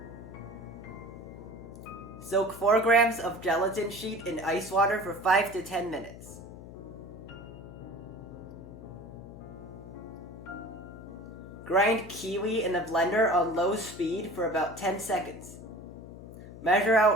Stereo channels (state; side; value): noise; left; hum, 15 dB below the sound